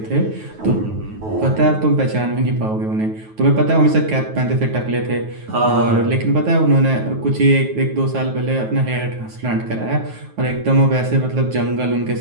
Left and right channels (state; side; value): late; left; 9.3 ms